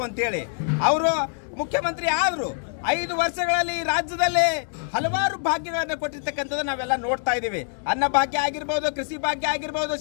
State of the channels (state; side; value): silent; right; digital silence